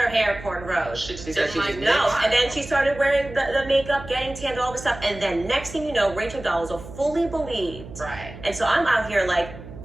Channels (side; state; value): right; noise; hum, 14 dB below the sound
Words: hair cornrowed. She just She said didn't she was like mixed. No, and then she started wearing the makeup, getting tanned, all this stuff, and then next thing you know, Rachel Dolezal fully believed. Right. And so I'm out here like,